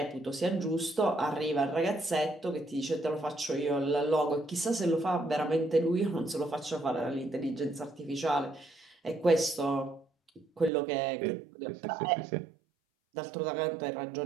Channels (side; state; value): left; drops out; at 10.7 s